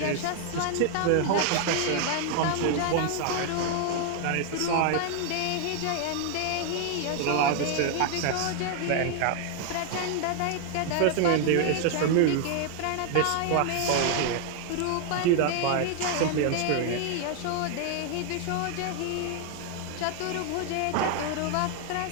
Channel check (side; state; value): both; different; correlation 0.00